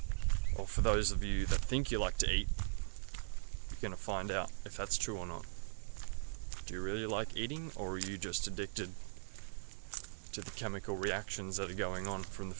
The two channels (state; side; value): silent; left; 51 dB below the other